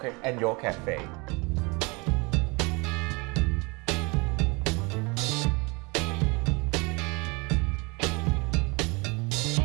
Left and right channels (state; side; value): quieter; left; 28.0 dB